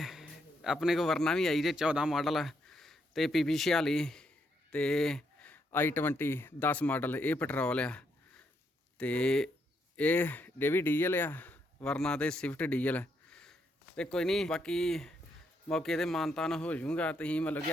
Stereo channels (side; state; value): both; normal; correlation 0.77